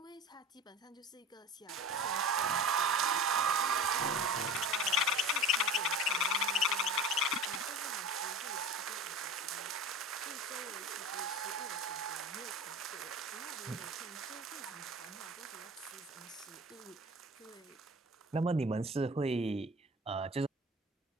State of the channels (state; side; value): normal; both; correlation 0.34